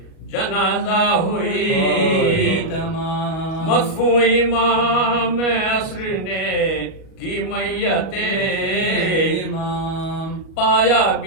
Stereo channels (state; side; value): late; right; 37 ms